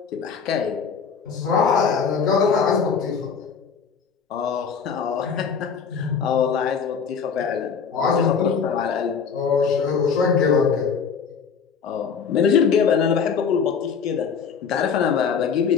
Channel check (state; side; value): quieter; right; 6.3 dB